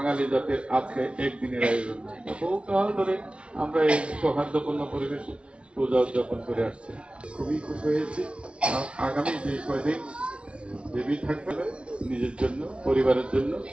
জাতির আজকে একদিনের আয়োজন, বহুকাল ধরে আমরা এই সৌহার্দ্যপূর্ণ পরিবেশে পূজা উদযাপন করে আসছি। খুবই খুশি হয়েছি। আগামী যে কয়দিন দেবী থাকবে নিজের জন্য, পরিবারের জন্য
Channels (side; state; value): left; late; 0.059 ms